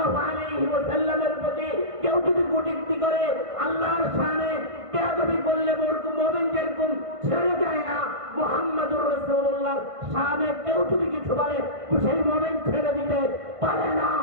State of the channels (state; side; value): late; left; 1.5 ms